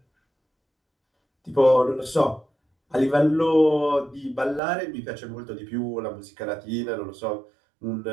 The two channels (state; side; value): drops out; left; at 4.6 s